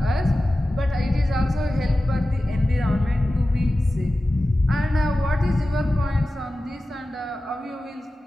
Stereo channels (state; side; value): normal; both; correlation 0.95